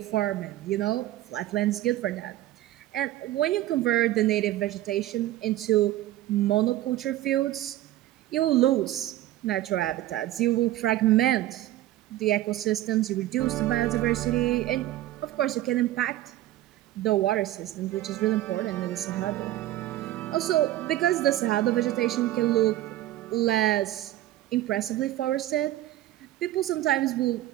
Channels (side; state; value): left; quieter; 14.7 dB